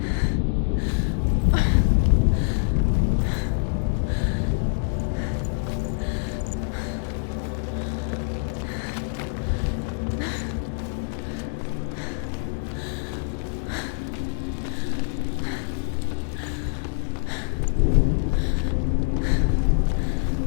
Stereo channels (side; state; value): right; silent; digital silence